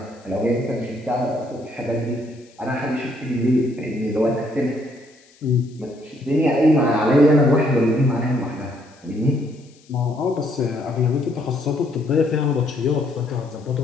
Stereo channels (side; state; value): left; noise; hiss, 30 dB below the sound